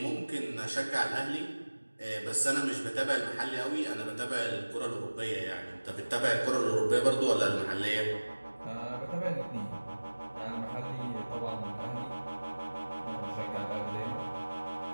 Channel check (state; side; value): inverted; both; correlation -1.00